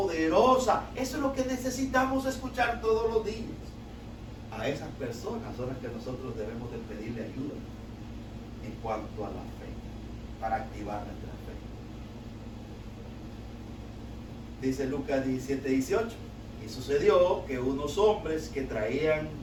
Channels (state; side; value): identical; both; correlation 1.00